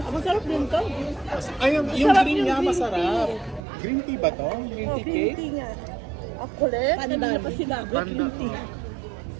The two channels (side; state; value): left; drops out; at 3.6 s